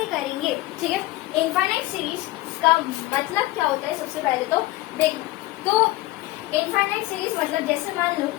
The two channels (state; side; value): quieter; right; 18.2 dB